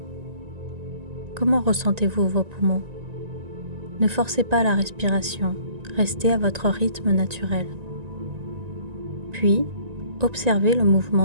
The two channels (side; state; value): left; late; 1.9 ms